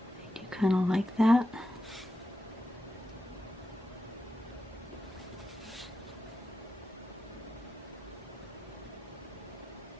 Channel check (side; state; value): both; normal; correlation 0.89